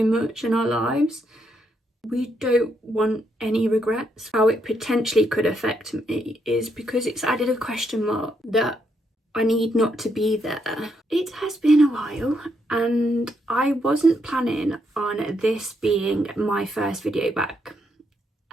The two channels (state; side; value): normal; both; correlation 0.77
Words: much in our lives. We don't want any regrets. How it potentially could affect me is because it's added a question mark that I need not to be there. It has been a while, and I wasn't planning on this being my first video back.